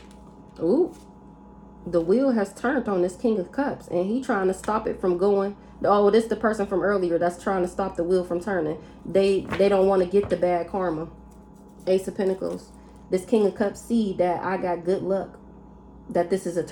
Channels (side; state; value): both; identical; correlation 1.00